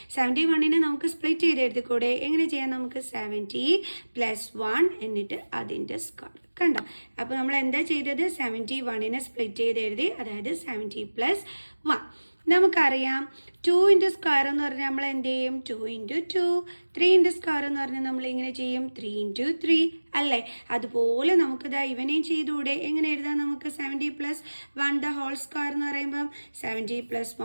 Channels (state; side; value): inverted; both; correlation -1.00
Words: 71 നമുക്ക് സ്പ്ലിറ്റ് ചെയ്ത് എഴുതിക്കൂടെ? എങ്ങനെ ചെയ്യാം? നമുക്ക് 70 + 1 എന്നിട്ട് അതിൻ്റെ സ്ക്വയർ. കണ്ടോ? അപ്പോൾ നമ്മൾ എന്താ ചെയ്തത്? 71 സ്പ്ലിറ്റ് ചെയ്ത് എഴുതി, അതായത് 70 + 1. നമുക്കറിയാം 2 സ്ക്വയർ എന്ന് പറഞ്ഞാൽ നമ്മൾ എന്ത് ചെയ്യും? 2 × 2. 3 സ്ക്വയർ എന്ന് പറഞ്ഞാൽ നമ്മൾ ഇങ്ങനെ ചെയ്യും 3 × 3 അല്ലേ. അതുപോലെ നമുക്കിതാ ഇവനെയും ചെയ്തുകൂടെ? എങ്ങനെ എഴുതാം? നമുക്ക് 70 + 1 ദ ഹോൾ സ്ക്വയർ എന്ന് പറയുമ്പം 70 +